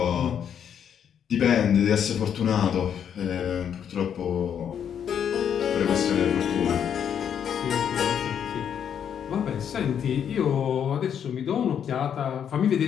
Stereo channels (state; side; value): quieter; right; 8.5 dB